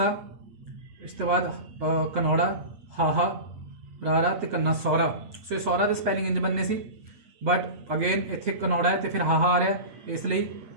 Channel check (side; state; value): left; late; 8.6 ms